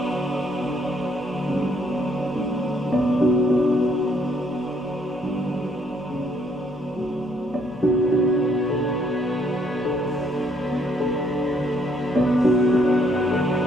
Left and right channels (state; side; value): noise; left; hum, 27 dB below the sound